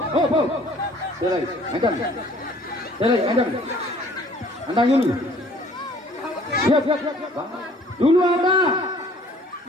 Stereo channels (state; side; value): normal; both; correlation 0.55